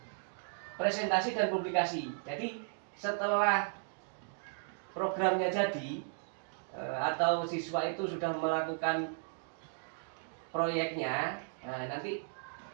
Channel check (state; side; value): silent; left; digital silence